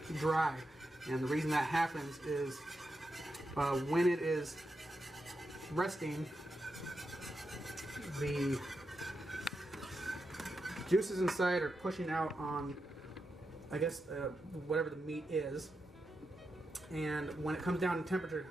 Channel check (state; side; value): normal; both; correlation 0.87